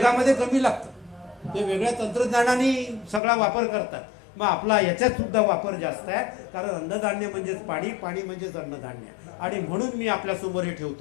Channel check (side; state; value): right; drops out; at 3.2 s